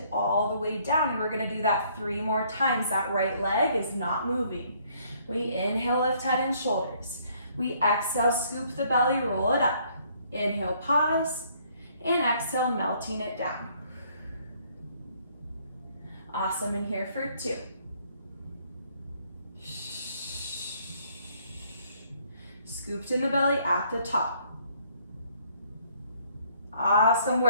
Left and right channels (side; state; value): both; inverted; correlation -0.64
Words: all the way down. And we're gonna do that 3 more times. That right leg is not moving. We inhale, lift head and shoulders. We exhale, scoop the belly, roll it up. Inhale, pause, and exhale, melting it down. Awesome, and here for 2. Scooped in the belly at the top. Awesome